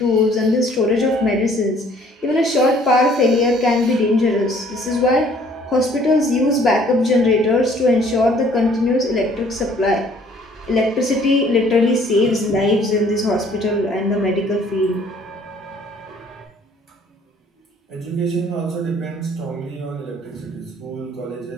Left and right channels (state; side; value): normal; both; correlation 0.58